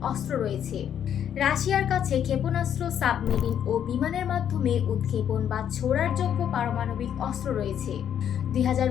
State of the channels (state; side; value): quieter; right; 9.3 dB